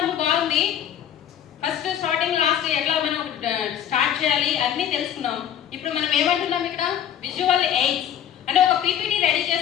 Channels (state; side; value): quieter; right; 9.9 dB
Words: బాగుంది. ఫస్ట్ స్టార్టింగ్ లాస్ట్ ఎట్లా మనం స్టార్ట్ చేయాలి అన్ని తెలుసుకున్నాం. ఇప్పుడు మనం ఏమంటున్నాం ఇక్కడ, విజువల్ ఎయిడ్స్ అంటే ఒక పీపీటీ రెడీ